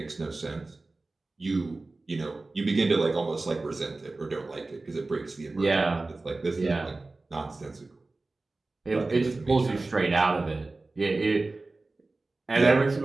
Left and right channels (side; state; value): left; quieter; 3.3 dB